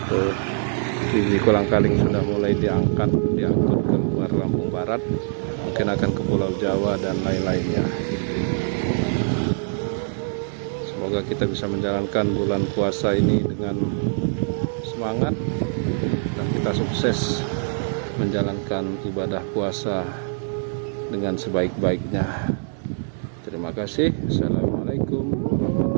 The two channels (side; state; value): left; silent; digital silence